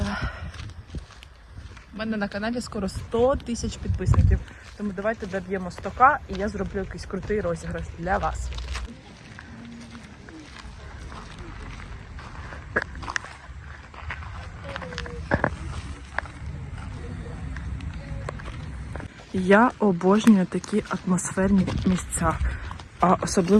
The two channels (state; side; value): identical; both; correlation 1.00